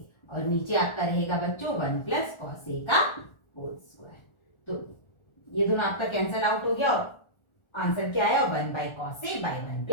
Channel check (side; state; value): right; late; 1.4 ms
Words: और नीचे आपका रहेगा बच्चों 1 प्लस कॉस ए का होल स्क्वायर। तो ये दोनों आपका कैंसल आउट हो गया, और आंसर क्या आया, 1 by cos A by 1